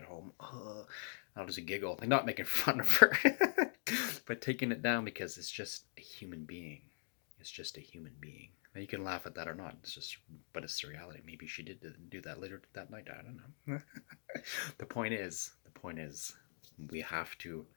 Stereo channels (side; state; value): right; silent; digital silence